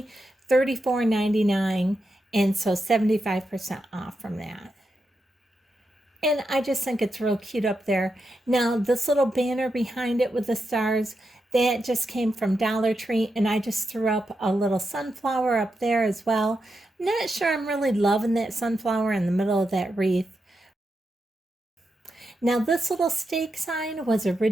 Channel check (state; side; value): normal; both; correlation 0.86